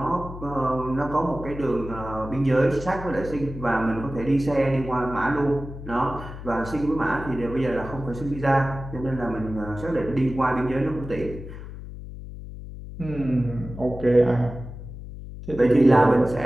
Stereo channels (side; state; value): left; noise; hum, 11 dB below the sound